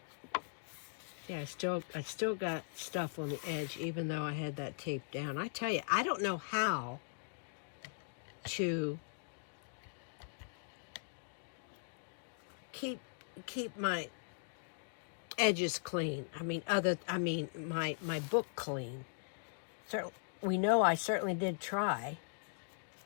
yeah, I still got stuff on the edge, even though I had that tape down. I tell you, I don't know how to keep my edges clean. I mean, my book clean. So we know I certainly did try.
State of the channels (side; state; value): right; silent; digital silence